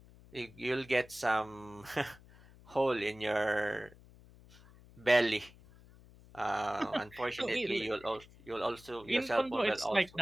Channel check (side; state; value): left; noise; hum, 23 dB below the sound